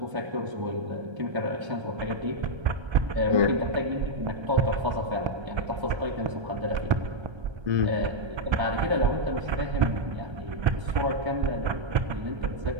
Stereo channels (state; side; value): late; left; 1.3 ms